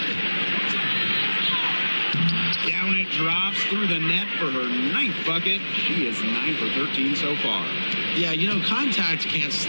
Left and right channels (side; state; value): both; inverted; correlation -1.00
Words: Down it drops through the net for her 9th bucket. She is 9 for 13 so far. Yeah, you know, contact can't